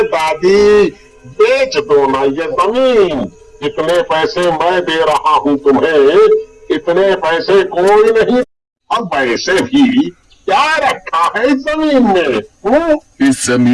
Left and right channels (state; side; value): identical; both; correlation 1.00